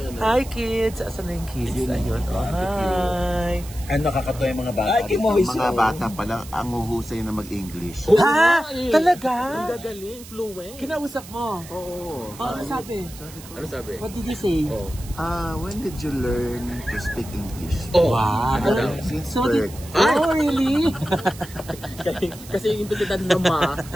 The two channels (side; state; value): right; noise; hiss, 17 dB below the sound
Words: Hi, kids. Asan na yung kids? Ayun. Oh, hi. Ano nakakatawa yung mga bata? Ay, Ang mga bata pala ang huhusay na mag-English. Ha? Talaga? Gagaling, fluent. Kinausap mo? Oo. Oh, ano sabi? Ano sabi? What did you say? Oh. When did you learn to speak English? Oh. Wow. Since So, birth. oh, really? Kasi yung implisidad na